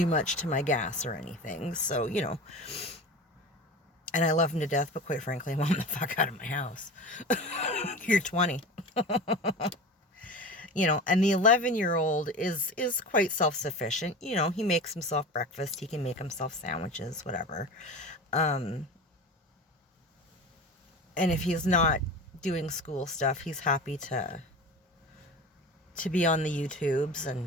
much to my gas or anything, so, you know. And I love him to death, but quite frankly, I want him the fuck out of my house. You're 20. You know, and the 11-year-old is quite self-sufficient. You know, he makes himself breakfast. He can make himself sandwiches, whatever. And if he's not doing school stuff, he's happy to be on the YouTubes.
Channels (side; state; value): both; normal; correlation 0.32